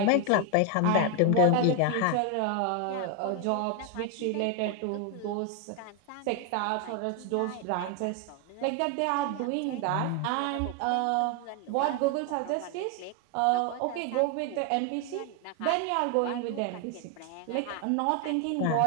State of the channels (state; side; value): different; both; correlation 0.01